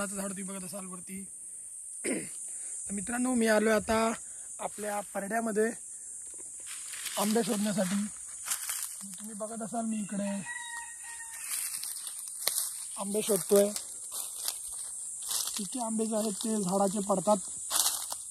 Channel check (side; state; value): both; identical; correlation 1.00